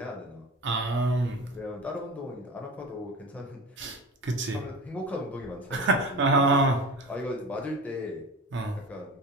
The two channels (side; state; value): both; normal; correlation 0.33